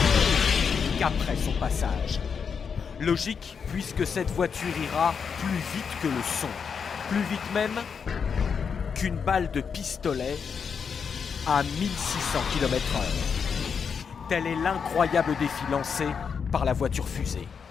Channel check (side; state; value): right; quieter; 6.3 dB